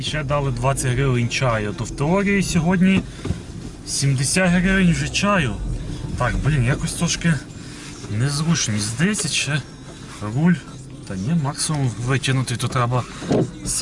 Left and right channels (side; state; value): both; identical; correlation 1.00